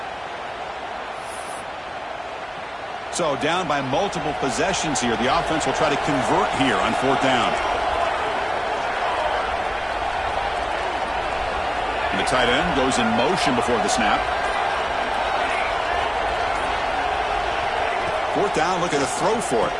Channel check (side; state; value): both; identical; correlation 1.00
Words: So down by multiple possessions here. The offense will try to convert here on fourth down. And the tight end goes in motion before the snap. Fourth down, look at a throw for it.